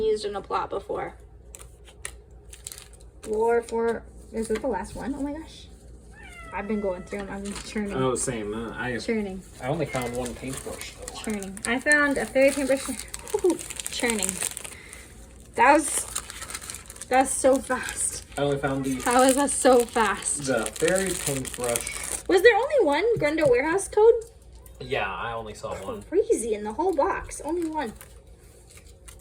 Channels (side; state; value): both; identical; correlation 1.00